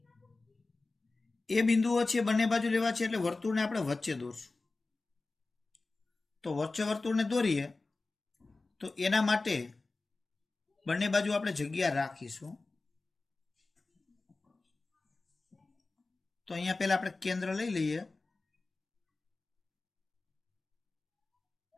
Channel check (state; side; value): quieter; right; 3.5 dB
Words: એ બિંદુઓ છે બંને બાજુ લેવા છે, એટલે વર્તુળને આપણે વચ્ચે દોરશું. તો વચ્ચે વર્તુળને દોરીએ તો એના માટે બંને બાજુ આપણે જગ્યા રાખીશું. તો અહીંયા પહેલા આપણે કેન્દ્ર લઈ લઈએ.